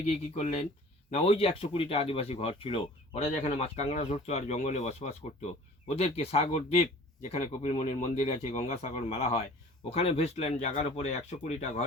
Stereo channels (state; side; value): normal; both; correlation 0.47